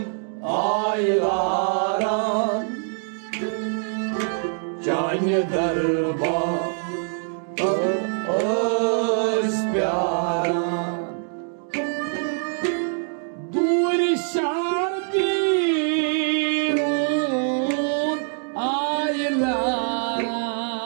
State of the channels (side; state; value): left; silent; 58 dB below the other